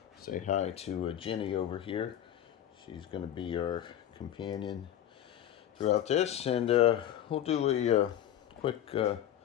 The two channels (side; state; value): right; quieter; 11.0 dB